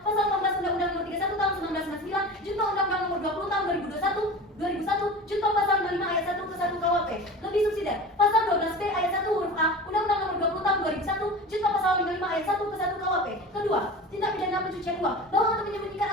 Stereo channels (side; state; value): both; normal; correlation 0.34